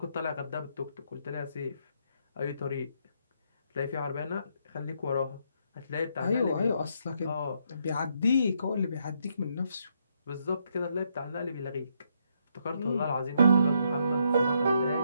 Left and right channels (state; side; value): inverted; both; correlation -0.75